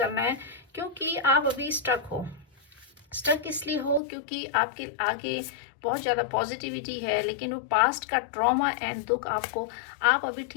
है। क्योंकि आप अभी स्टक हो। स्टक इसलिए हो क्योंकि आपके आगे बहुत ज़्यादा पॉजिटिविटी है, लेकिन वो पास्ट का ट्रॉमा एंड दुख आपको, आप अभी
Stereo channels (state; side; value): drops out; right; at 4.0 s